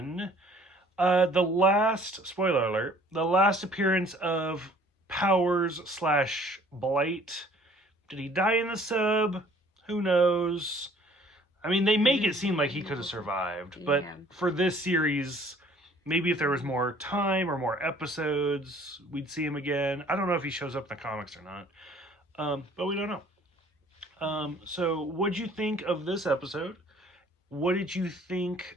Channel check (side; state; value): both; normal; correlation 0.55